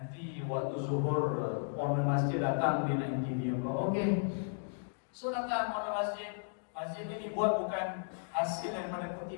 waktu zuhur, owner masjid datang, dia nak interview. Okey. So datang owner masjid. Masjid ini dibuat bukan hasil daripada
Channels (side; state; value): right; silent; digital silence